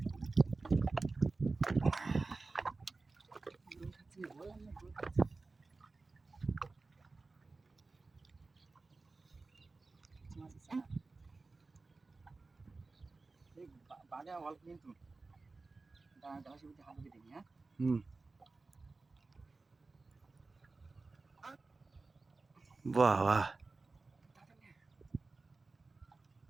বাড়ে অল্প কিন্তু হাত দিবি, হ্যাঁ হুম, বাহ বাহ,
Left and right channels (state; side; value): quieter; left; 3.7 dB